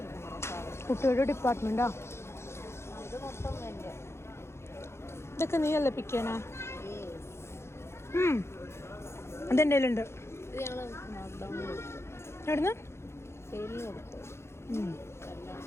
കുട്ടിയുടെ ഡിപ്പാർട്ട്മെൻറ്റാ. ഇതൊക്കെ നീയല്ലേ പിക്കാനാ? അതെൻ്റെ കയ്യിലുണ്ട്. എവിടുന്ന്?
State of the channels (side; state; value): right; late; 0.13 ms